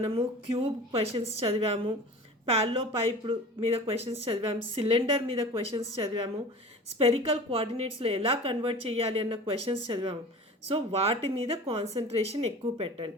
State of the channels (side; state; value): both; normal; correlation 0.38